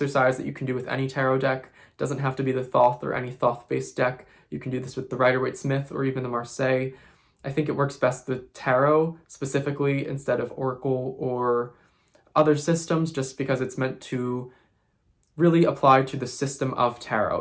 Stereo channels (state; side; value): identical; both; correlation 1.00